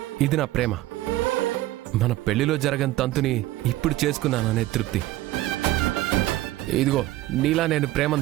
ఇది నా ప్రేమ. మన పెళ్లిలో జరగని తంతుని ఇప్పుడు చేసుకున్నాననే తృప్తి. ఇదిగో, నీలా నేను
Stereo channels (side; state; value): left; quieter; 16.4 dB